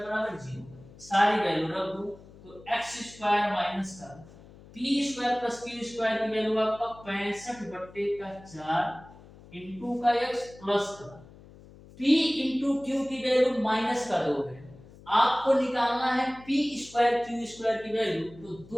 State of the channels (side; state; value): left; noise; hum, 21 dB below the sound